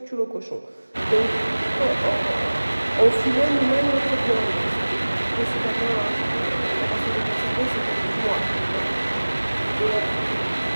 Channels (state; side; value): inverted; both; correlation -1.00